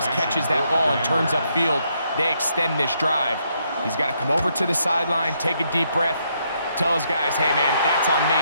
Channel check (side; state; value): both; inverted; correlation -0.75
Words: catches that ball and turns upfield, they extend this drive. He's got to come over to the sideline, take a deep breath, tell his guys, hey, man, that's on